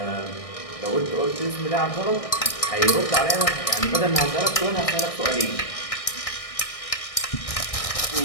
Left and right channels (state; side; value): late; right; 1.6 ms